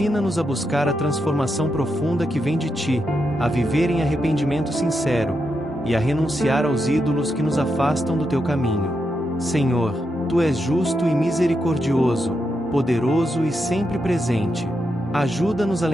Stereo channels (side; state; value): both; normal; correlation 0.84